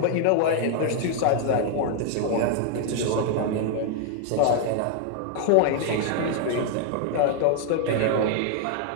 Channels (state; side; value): different; both; correlation 0.00